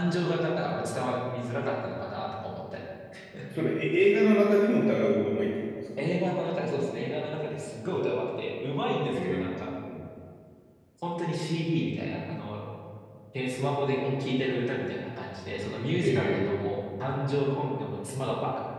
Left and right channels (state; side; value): identical; both; correlation 1.00